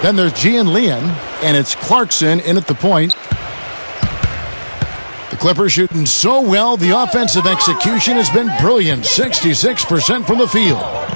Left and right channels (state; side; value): inverted; both; correlation -1.00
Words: Then there's Gian Leon. And it's Clarkson in at the point. The Clippers shooting so well, the offensive execution has been brilliant. 66% from the field.